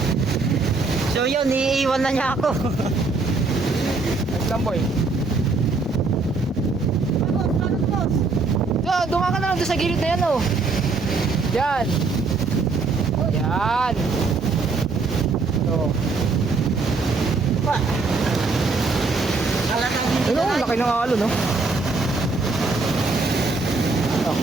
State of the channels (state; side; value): quieter; left; 4.0 dB